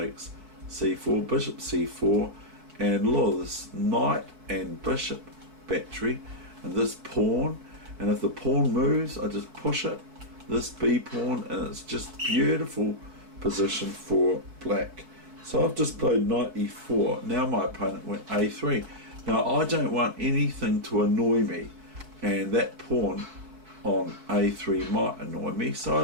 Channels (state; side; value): late; left; 4.6 ms